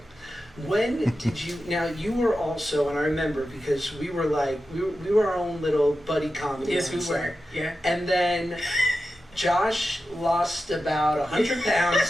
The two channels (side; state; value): both; normal; correlation 0.92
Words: When did you, now you were also, and I remember because we were like, we were our own little buddy comedy. Yes, we on were, set. yeah. And then Josh lost about 100